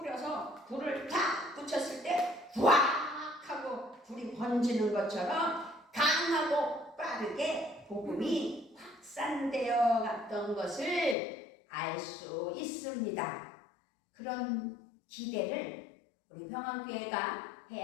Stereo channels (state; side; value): drops out; right; at 11.2 s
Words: 불을 탁 붙였을 때 후악 하고 불이 번지는 것처럼 강하고 빠르게 복음이 확산되어 갔던 것을 알 수 있습니다. 그런 기대를 우리 평안교회가